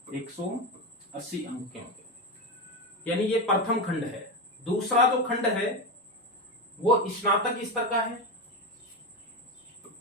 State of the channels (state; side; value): normal; both; correlation 0.15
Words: 180 अंक के होंगे। यानी ये प्रथम खंड है। दूसरा जो खंड है वो स्नातक स्तर का है।